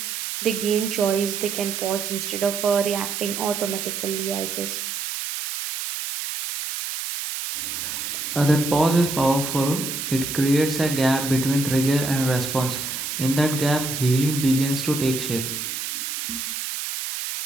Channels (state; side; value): noise; right; hiss, 4 dB below the sound